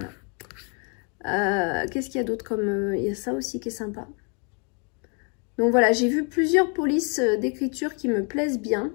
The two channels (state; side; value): quieter; right; 37.1 dB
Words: Qu'est-ce qu'il y a d'autre comme... il y a ça aussi qui est sympa. Donc voilà, j'ai vu plusieurs polices d'écriture qui me plaisent bien.